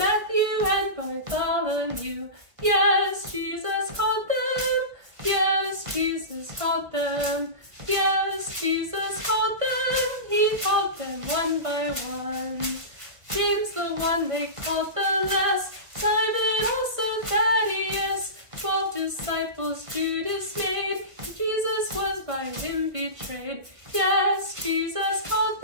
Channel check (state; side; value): late; left; 1.2 ms